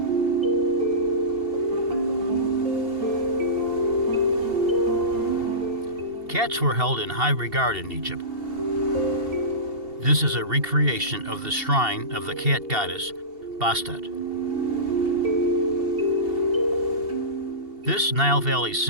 Cats were held in high regard in Egypt. This is a recreation of the shrine of the cat goddess Bastet. This Nile Valley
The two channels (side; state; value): left; late; 2.7 ms